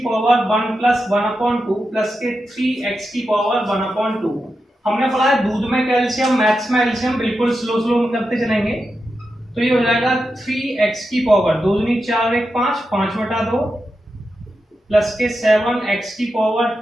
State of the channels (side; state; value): both; normal; correlation 0.89